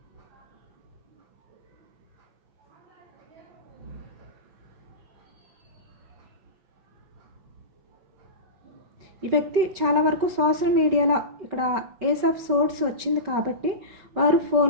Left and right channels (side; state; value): left; late; 5.2 ms